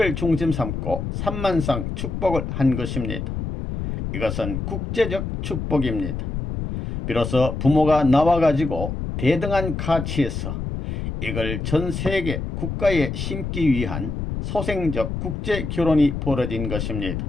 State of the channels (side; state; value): left; noise; rumble, 4 dB below the sound